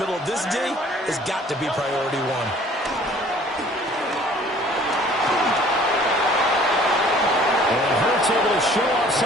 middle of this D, has got to be priority one. Able to show off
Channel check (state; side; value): normal; both; correlation 0.53